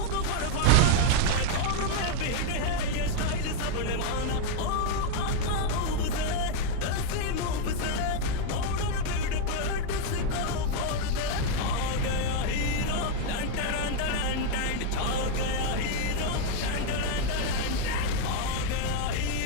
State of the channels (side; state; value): both; different; correlation 0.01